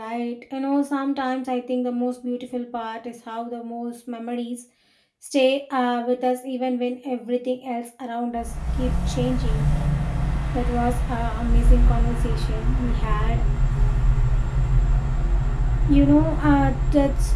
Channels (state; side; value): identical; both; correlation 1.00